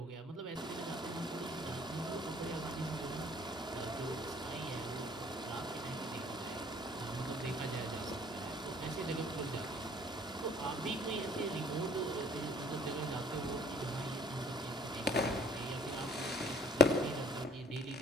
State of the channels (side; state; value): both; normal; correlation 0.55